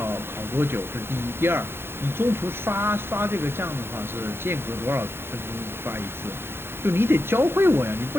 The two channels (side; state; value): left; late; 0.11 ms